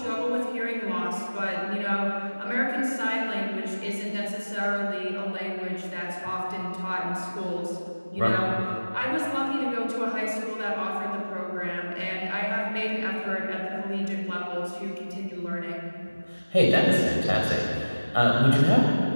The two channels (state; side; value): inverted; both; correlation -1.00